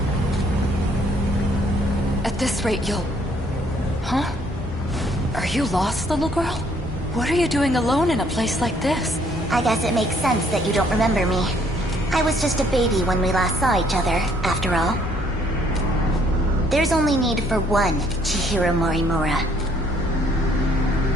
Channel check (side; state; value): both; normal; correlation 0.64